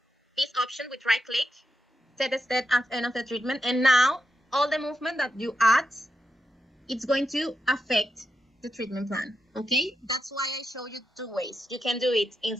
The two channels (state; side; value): normal; both; correlation 0.86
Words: This option with right click, set the step at end of the treatment, and now all the movement that you add, it's going to affect the treatment plan. Okay, that's why I show you two ways. You can do it